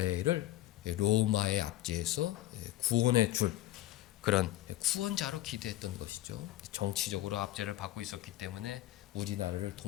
로마의 압제에서 구원해 줄 그런 구원자로 기대했던 것이죠. 정치적으로 압제를 받고 있었기 때문에 우리나라를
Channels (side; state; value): right; quieter; 14.8 dB